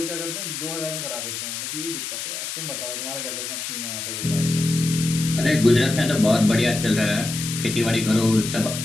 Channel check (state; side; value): noise; left; hiss, 5 dB below the sound